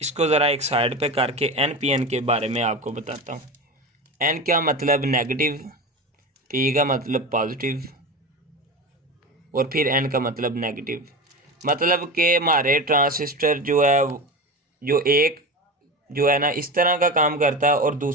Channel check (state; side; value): normal; both; correlation 0.26